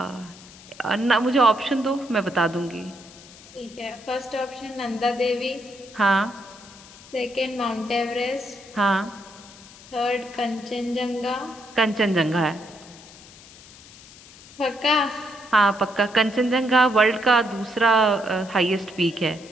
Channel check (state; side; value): noise; left; hiss, 21 dB below the sound